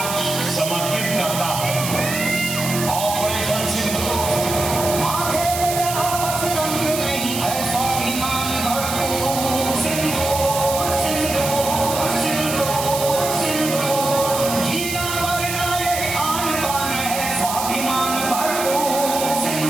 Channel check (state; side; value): noise; right; hiss, 5 dB below the sound